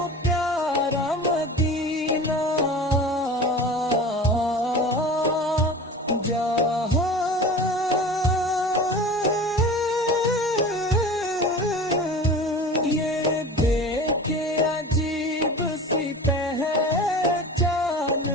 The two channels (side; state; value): both; normal; correlation 0.36